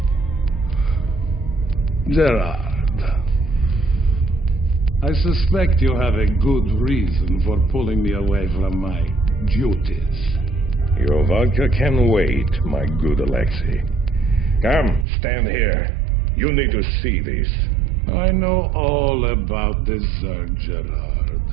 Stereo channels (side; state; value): left; drops out; at 15.1 s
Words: Gerard, I suspect you have a good reason for pulling me away from my duties. Your vodka can wait, my good Alexei. Come, stand here. You need to see this. I know all about this Zerg, Gerard.